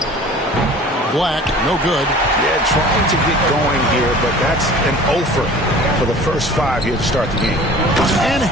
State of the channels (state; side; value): normal; both; correlation 0.44